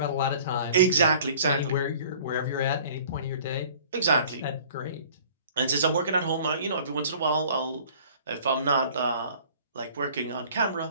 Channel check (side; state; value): both; inverted; correlation -0.50